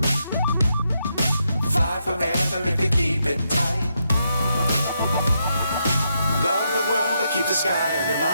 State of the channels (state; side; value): inverted; both; correlation -0.81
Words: Fly forever if you keep it tight. Love the world but keep the sky on your